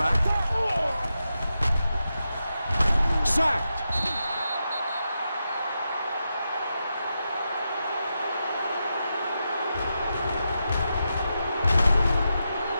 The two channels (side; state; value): both; inverted; correlation -0.87